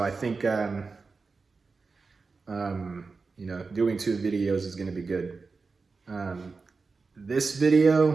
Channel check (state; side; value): quieter; left; 4.4 dB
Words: I think, doing 2 videos is gonna be good. This